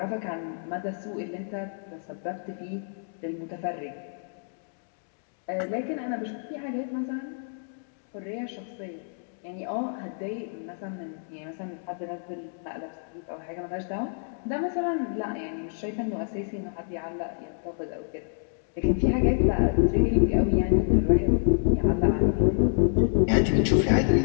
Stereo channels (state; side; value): silent; right; digital silence